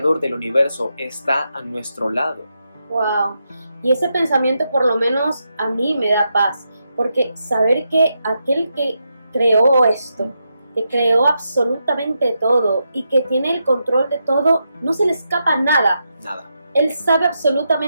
del universo está a nuestro lado. Wow, y ese pensamiento por lo menos a mí me da paz, porque saber que aquel que creó esto, que creó absolutamente todo y que tiene el control de todo, no se le escapa nada. Nada. Él sabe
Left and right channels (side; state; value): both; inverted; correlation -0.84